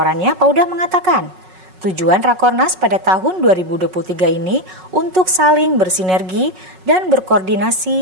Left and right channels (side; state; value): left; late; 5.4 ms